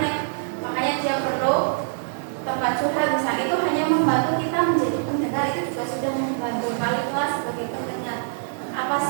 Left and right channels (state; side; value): silent; left; digital silence